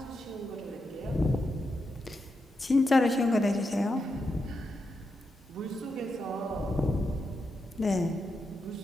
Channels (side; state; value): both; normal; correlation 0.86